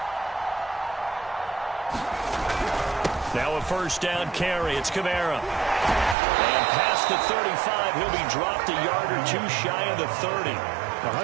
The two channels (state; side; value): drops out; left; at 6.2 s